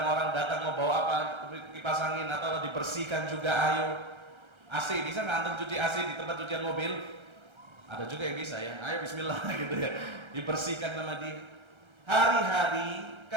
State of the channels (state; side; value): late; left; 1.3 ms